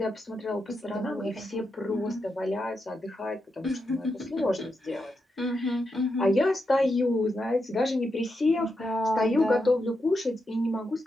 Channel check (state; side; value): normal; both; correlation 0.85